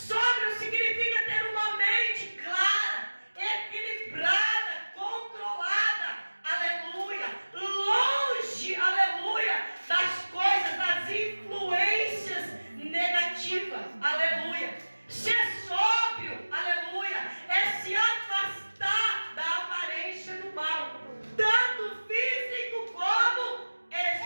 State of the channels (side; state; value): both; inverted; correlation -1.00